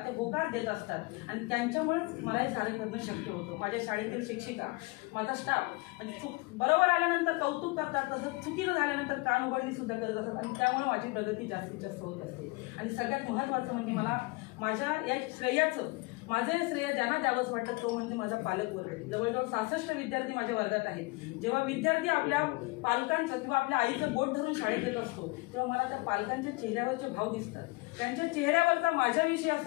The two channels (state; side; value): quieter; right; 25.2 dB